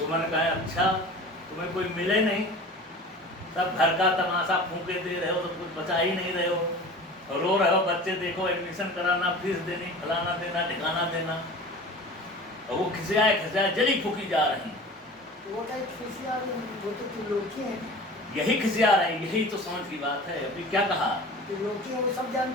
कहे अच्छा तुम्हें कोई मिले नहीं, सब घर का तमाशा फूके दे रहे हो तो कुछ बचा ही नहीं रहे हो, और रो रहे हो बच्चे देखो एडमिशन कराना, फीस देनी, फलाना देना, ठिकाना देना, और वो खिसियाए जली फूकी जा रही। वो क्या खिसिया रही, वो तो त्रिलोकी है। यही खिसिया रहे, यही तो समझ की बात है। अभी क्या कहा? त्रिलोकी है, वो सब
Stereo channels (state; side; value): normal; both; correlation 0.38